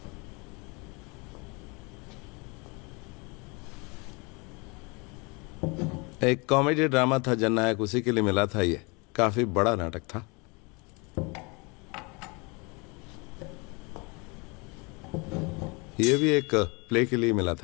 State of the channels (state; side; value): quieter; right; 29.2 dB